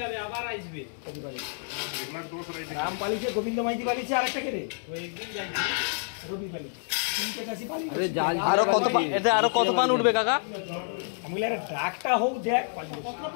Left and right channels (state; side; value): silent; right; 59 dB below the other